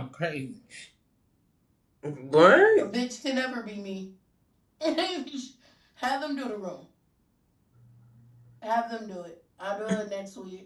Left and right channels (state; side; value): identical; both; correlation 1.00